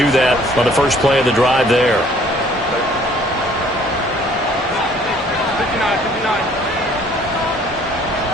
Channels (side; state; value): both; normal; correlation 0.58